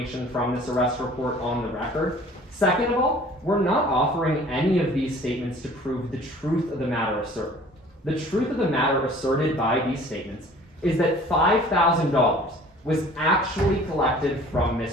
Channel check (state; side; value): normal; both; correlation 0.49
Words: from this arrest report on the record. Second of all, we're not offering any of these statements to prove the truth of the matter asserted. The truth of the matter asserted by these statements is that $5,000 was actually collected from